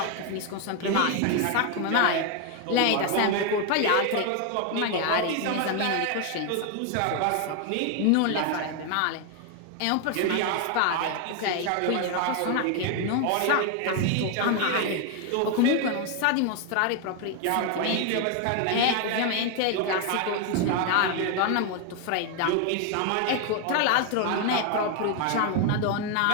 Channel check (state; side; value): different; both; correlation 0.01